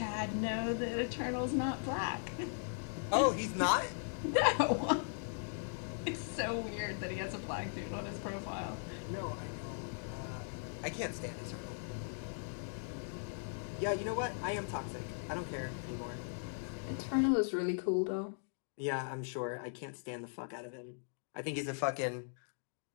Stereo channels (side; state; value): right; silent; digital silence